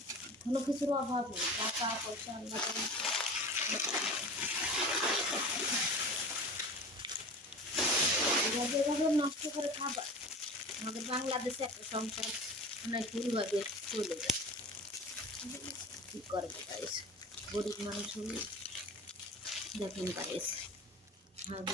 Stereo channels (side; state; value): both; normal; correlation 0.36